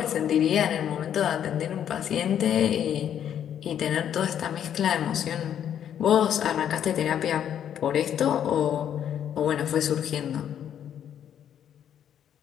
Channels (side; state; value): right; quieter; 9.6 dB